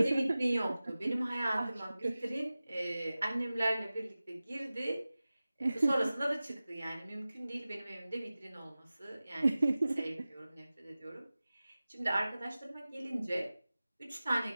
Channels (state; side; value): inverted; both; correlation -0.97